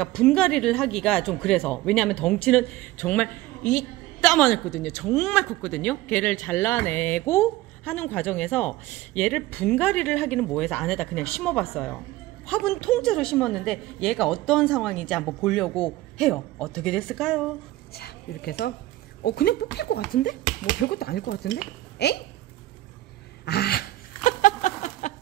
분갈이를 하기가 좀 그래서, 왜냐하면 덩치는 정말 이따만했거든요. 정말 컸거든요. 걔를 잘라내고 하는 과정에서 얘를 분갈이를 하기는 뭐해서 안에다 그냥 심어봤어요. 화분 통째로 심었는데 얘가 어떤 상황인지 한번 보려고 해요. 어떻게 됐을까요? 자, 이렇게 해서 그냥 뽑힐 것 같은데? 뭐 별것도 아닐 것 같은데? 에잉? 아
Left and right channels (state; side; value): quieter; left; 16.8 dB